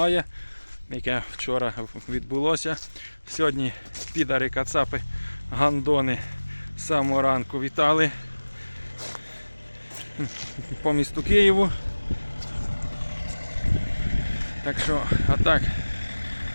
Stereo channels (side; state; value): both; inverted; correlation -1.00